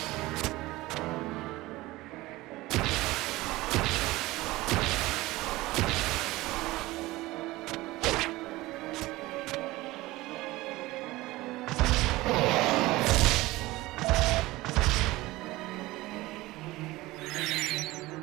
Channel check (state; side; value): quieter; left; 19.2 dB